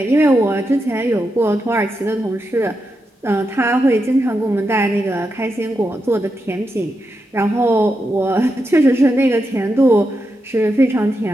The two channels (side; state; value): both; normal; correlation 0.86